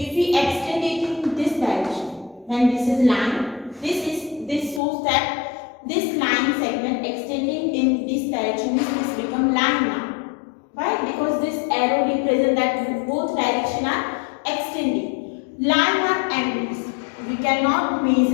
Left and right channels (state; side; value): drops out; right; at 4.8 s